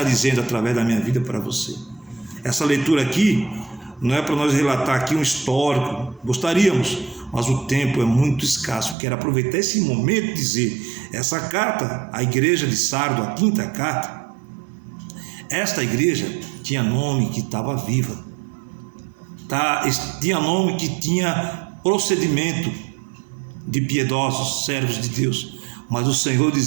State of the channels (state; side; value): drops out; left; at 9.0 s